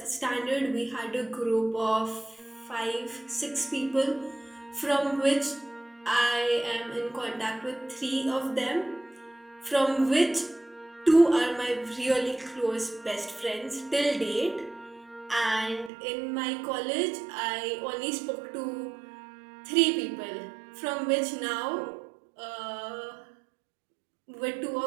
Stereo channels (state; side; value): drops out; left; at 15.9 s